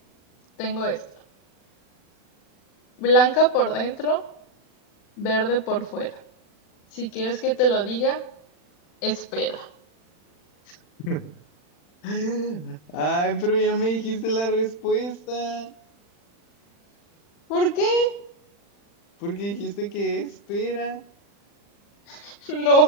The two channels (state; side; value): late; right; 40 ms